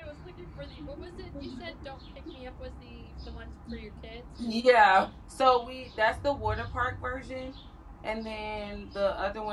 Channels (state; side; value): identical; both; correlation 1.00